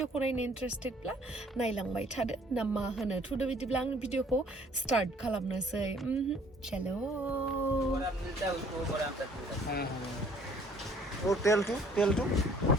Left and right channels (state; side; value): normal; both; correlation 0.58